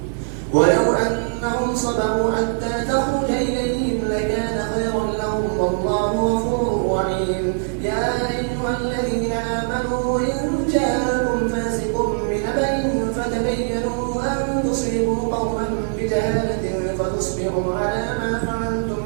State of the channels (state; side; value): silent; left; digital silence